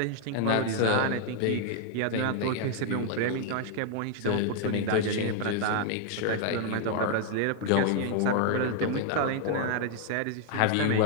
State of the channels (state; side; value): different; both; correlation 0.00